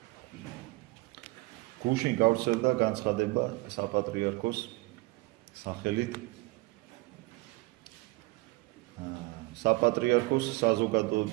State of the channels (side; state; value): left; quieter; 23.0 dB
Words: გუშინ გავრცელდა განცხადება საპატრიარქოს სახელით საპატრიარქოს